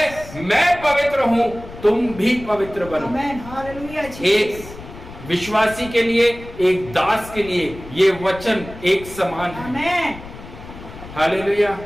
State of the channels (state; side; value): noise; left; rumble, 15 dB below the sound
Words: मैं पवित्र हूं, तुम भी पवित्र बनो। आमीन, हालेलुया, एक विश्वासी के लिए, एक दास के लिए ये वचन एक समान है। आमीन, हालेलुया।